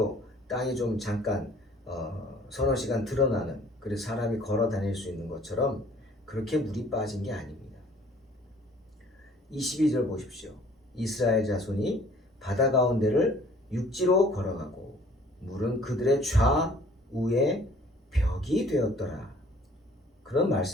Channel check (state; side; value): normal; both; correlation 0.55